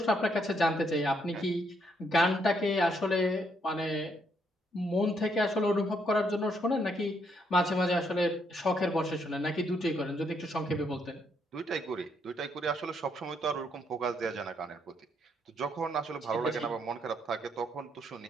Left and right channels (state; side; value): normal; both; correlation 0.73